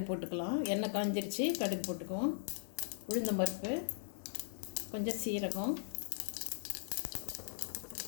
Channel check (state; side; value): silent; right; digital silence